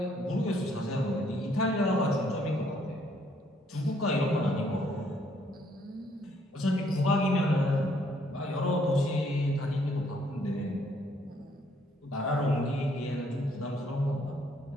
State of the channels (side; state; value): both; normal; correlation 0.67